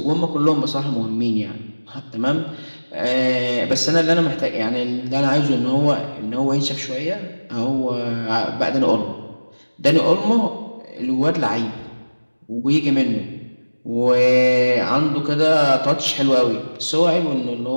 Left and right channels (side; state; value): both; inverted; correlation -1.00